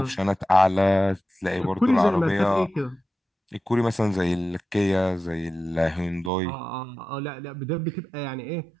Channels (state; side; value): drops out; left; at 6.3 s